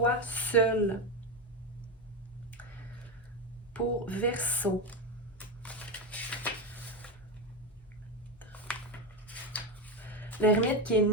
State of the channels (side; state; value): both; normal; correlation 0.13